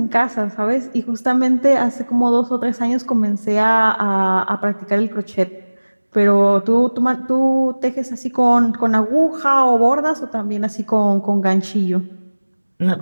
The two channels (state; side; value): inverted; both; correlation -1.00